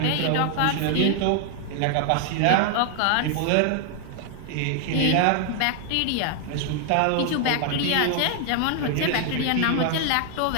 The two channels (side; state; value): both; different; correlation 0.00